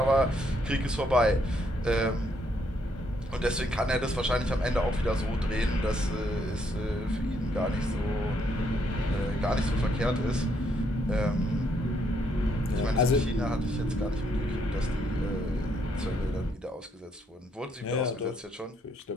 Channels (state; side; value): normal; both; correlation 0.73